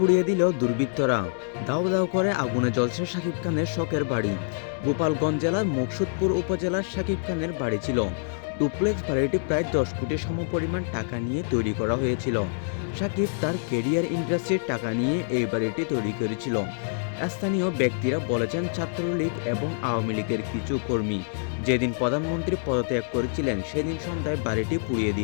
দিল দুর্বৃত্তরা। দাউ দাউ করে আগুনে জ্বলছে সাকিব খানের শখের বাড়ি। গোপালগঞ্জ জেলার মকসুদপুর উপজেলার সাকিব খানের বাড়ি ছিল। ডুপ্লেক্স বাড়িটি প্রায় 10 কোটি সমপরিমাণ টাকা নিয়ে তৈরি করা হয়েছিল। সাকিব তার কেরিয়ার ইন্ডাস্ট্রির টাকা নিয়ে এই বাড়িটি তৈরি করেছিল। স্থানীয় ব্যক্তিরা বলেছেন, ছাত্রলীগ এবং আওয়ামী লীগের কিছু কর্মী যেদিন প্রধানমন্ত্রী পদত্যাগ করেছিলেন সেদিন সন্ধ্যায় বাড়িটি পুড়িয়ে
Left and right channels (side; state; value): right; silent; digital silence